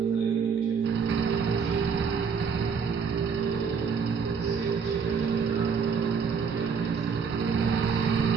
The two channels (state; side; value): quieter; left; 6.0 dB